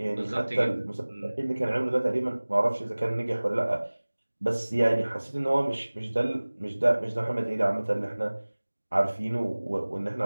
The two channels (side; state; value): both; inverted; correlation -1.00